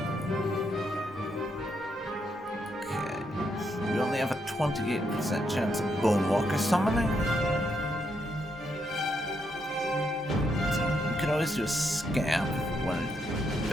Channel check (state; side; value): normal; both; correlation 0.78